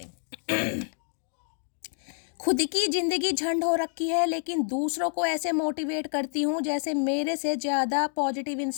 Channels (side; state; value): right; silent; 59 dB below the other